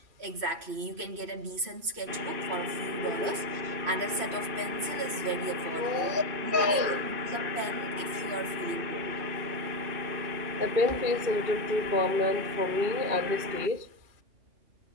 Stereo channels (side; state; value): left; late; 3.1 ms